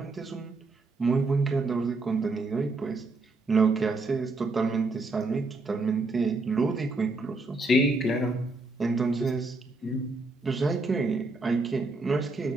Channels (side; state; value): left; quieter; 3.2 dB